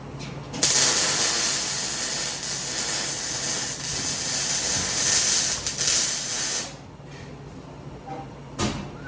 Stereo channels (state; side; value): identical; both; correlation 1.00